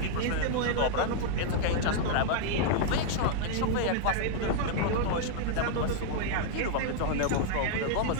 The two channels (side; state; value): both; different; correlation 0.00